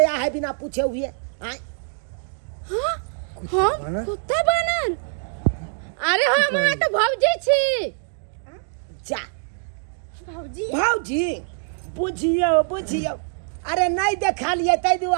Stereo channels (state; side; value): silent; left; digital silence